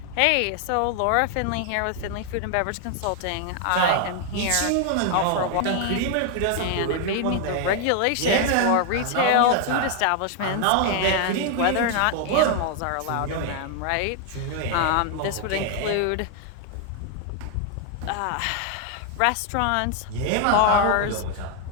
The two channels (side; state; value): both; different; correlation 0.00